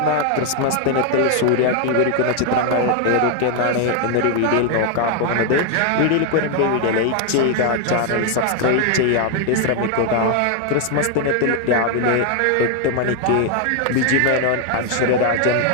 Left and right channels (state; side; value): different; both; correlation 0.01